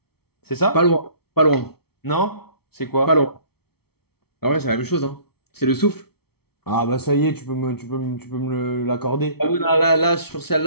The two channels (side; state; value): right; late; 0.95 ms